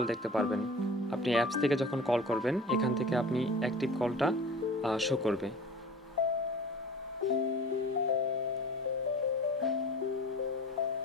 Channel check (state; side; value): normal; both; correlation 0.40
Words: দেখতে পারবেন। আপনি অ্যাপস থেকে যখন কল করবেন এখান থেকে আপনি অ্যাক্টিভ কলটা শো করবে।